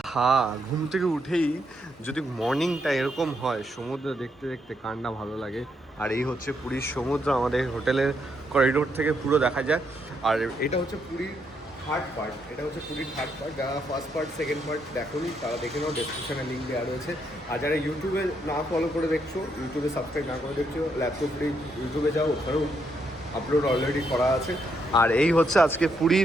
ঘুম থেকে উঠেই যদি মর্নিংটা এরকম হয়, সমুদ্র দেখতে দেখতে কান্না ভালো লাগে। আর এই হচ্ছে পুরীর সমুদ্র, আমাদের হোটেলের করিডোর থেকে পুরো দেখা যায়। আর এটা হচ্ছে পুরীর থার্ড পার্ট, যারা ফার্স্ট পার্ট সেকেন্ড পার্ট দেখোনি তারা দেখে নাও, ডেসক্রিপশনে লিঙ্ক দেওয়া রয়েছে। আর যারা ইউটিউবে না ফলো করে দেখছো, ইউটিউবে সাবস্ক্রাইব না করে দেখছো, ল্যাপটপ পুরী ইউটিউবে যাও, ওখানেও আপলোড অলরেডি করা আছে। আর এই হচ্ছে আজকে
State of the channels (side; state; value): both; normal; correlation 0.77